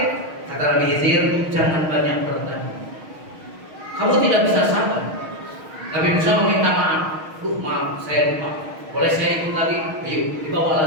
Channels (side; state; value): left; late; 6.4 ms